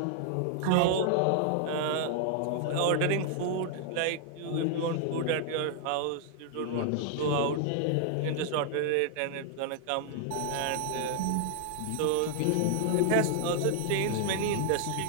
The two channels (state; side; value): different; both; correlation 0.00